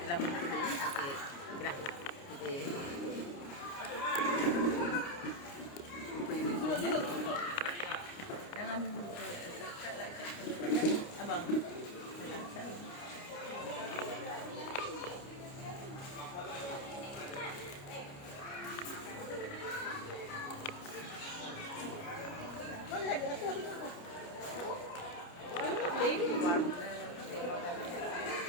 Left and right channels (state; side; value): late; right; 29 ms